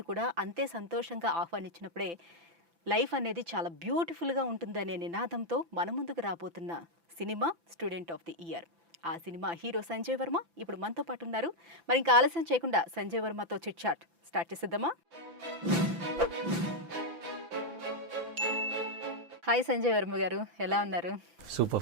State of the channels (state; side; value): late; left; 5.9 ms